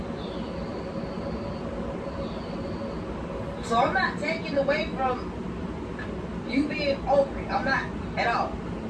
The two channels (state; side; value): identical; both; correlation 1.00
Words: So I'm not taking away from you being over it. I'm not at all.